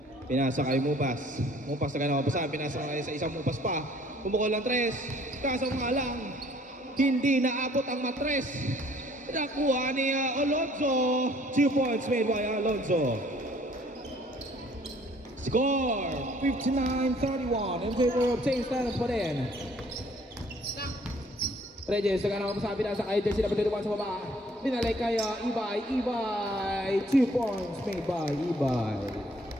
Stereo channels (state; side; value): normal; both; correlation 0.58